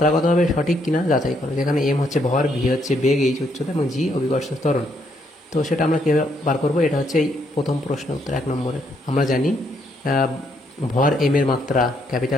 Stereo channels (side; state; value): both; normal; correlation 0.73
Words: সঠিক কিনা যাচাই করো। যেখানে m হচ্ছে ভর, v হচ্ছে বেগ, h উচ্চতা এবং g অভিকর্ষ ত্বরণ। তো সেটা আমরা কীভাবে বার করবো? এটা হচ্ছে এই প্রথম প্রশ্ন উত্তর 1 নম্বরের। আমরা জানি ভর m এর মাত্রা